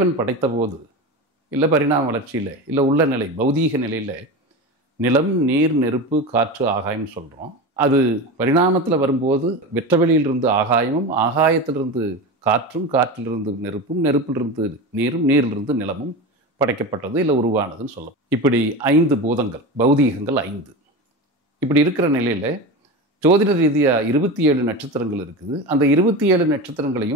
படைத்த போது இல்லை பரிணாம வளர்ச்சியில் இல்லை உள்ள நிலை பௌதீக நிலையில் நிலம், நீர், நெருப்பு, காற்று, ஆகாயம்னு சொல்கிறோம். அது பரிணாமத்தில் வரும்போது வெற்றவெளியிலிருந்து ஆகாயமும், ஆகாயத்திலிருந்து காற்றும், காற்றிலிருந்து நெருப்பும், நெருப்பிலிருந்து நீரும், நீரிலிருந்து நிலமும் படைக்கப்பட்டது இல்லை உருவானதுன்னு சொல்லலாம். இப்படி 5 பூதங்கள், பௌதீகங்கள் 5. இப்படி இருக்கிற நிலையில் ஜோதிட ரீதியாக 27 நட்சத்திரங்கள் இருக்குது. அந்த 27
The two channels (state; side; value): normal; both; correlation 0.25